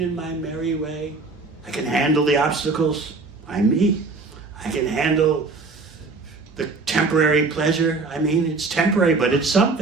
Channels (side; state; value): left; quieter; 3.9 dB